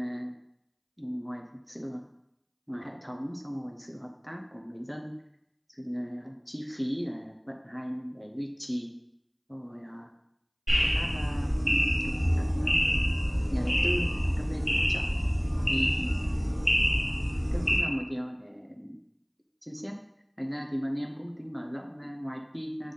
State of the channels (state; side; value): identical; both; correlation 1.00